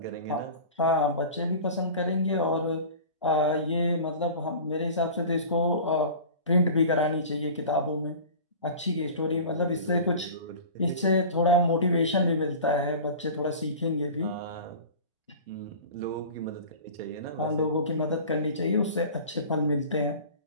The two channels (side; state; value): both; inverted; correlation -0.38